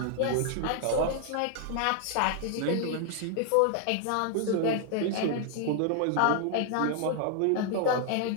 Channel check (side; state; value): both; different; correlation 0.00